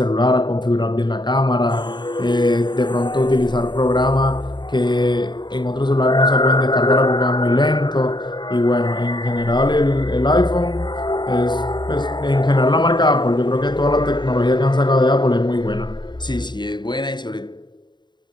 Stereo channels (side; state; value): right; late; 0.22 ms